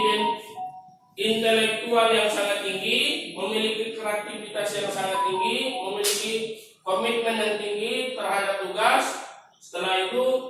intelektual yang sangat tinggi, memiliki kreativitas yang sangat tinggi, memiliki komitmen yang tinggi terhadap tugas. Setelah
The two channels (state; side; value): identical; both; correlation 1.00